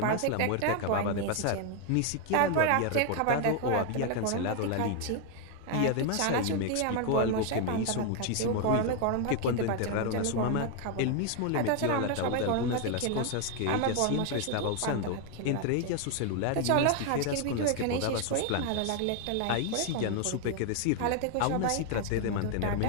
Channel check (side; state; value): both; different; correlation 0.01